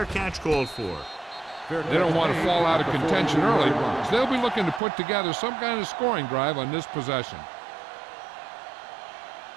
catch called for. They don't want to fall out of contention early, so they'll be looking to put together some kind of scoring drive on this possession.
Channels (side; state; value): left; drops out; at 4.8 s